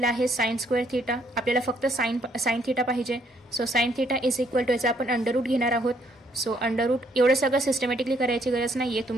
आहे साइन स्क्वेअर थिटा. आपल्याला फक्त साइन थिटा पाहिजे. So sine theta is equal to, याचा आपण अंडररूट घेणार आहोत. सो अंडररूट, एवढं सगळं सिस्टमॅटिकली करायची गरज नाही आहे,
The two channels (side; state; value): both; normal; correlation 0.69